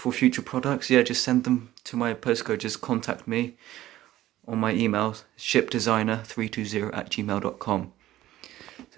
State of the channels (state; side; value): quieter; left; 14.7 dB